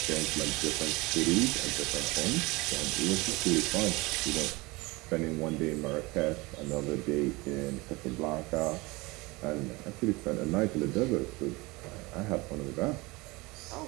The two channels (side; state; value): left; quieter; 23.6 dB